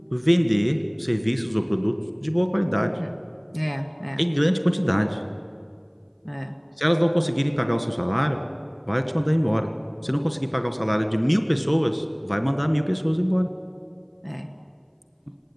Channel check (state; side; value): identical; both; correlation 1.00